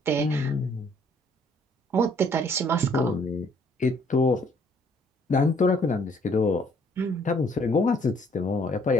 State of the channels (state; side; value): normal; both; correlation 0.63